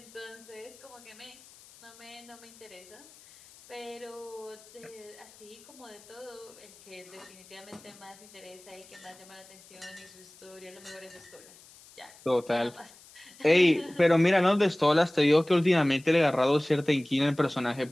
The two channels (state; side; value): noise; left; hiss, 23 dB below the sound